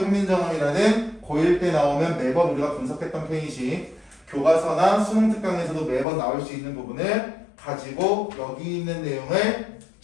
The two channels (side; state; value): right; drops out; at 6.1 s